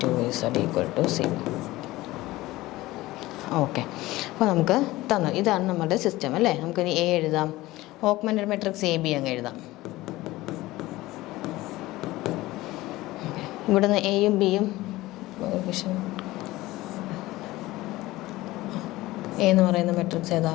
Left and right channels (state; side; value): quieter; right; 18.3 dB